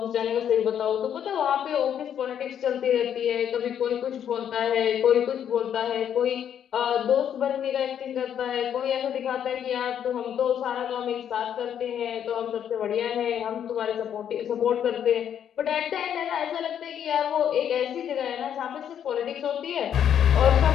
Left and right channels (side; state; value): right; quieter; 9.2 dB